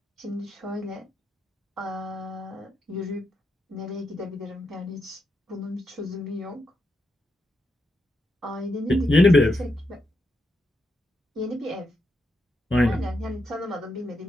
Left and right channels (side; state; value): both; normal; correlation 0.83